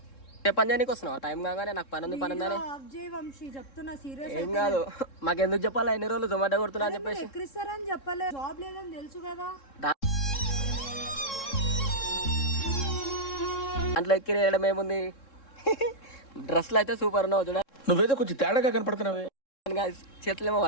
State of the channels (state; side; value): late; right; 3.7 ms